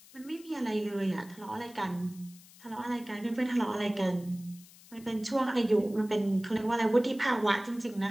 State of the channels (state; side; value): noise; left; hiss, 22 dB below the sound